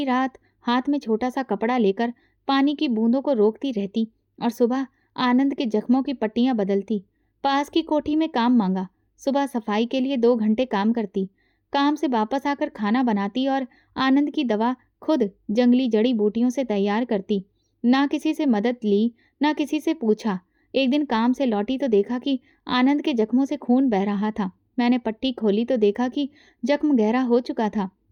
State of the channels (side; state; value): both; identical; correlation 1.00